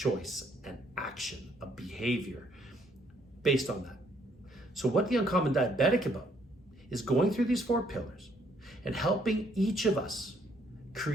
an action, a behavior based on that. So what the Uncommon Diabetic about is going through these 4 pillars and helping each of us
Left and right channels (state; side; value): normal; both; correlation 0.68